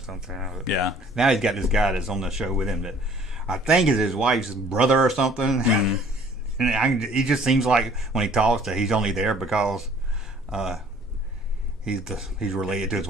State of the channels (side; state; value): both; normal; correlation 0.55